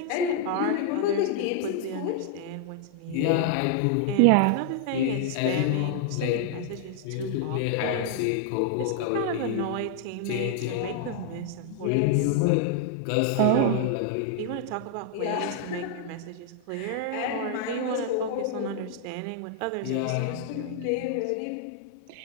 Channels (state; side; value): different; both; correlation 0.00